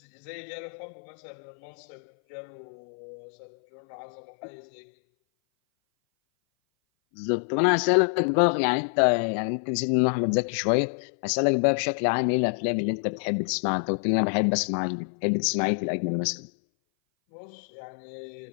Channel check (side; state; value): right; silent; 58 dB below the other